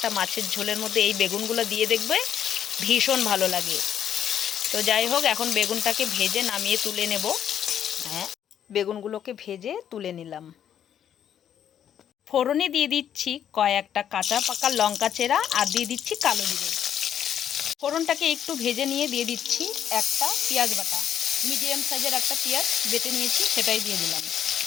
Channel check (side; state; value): right; quieter; 9.5 dB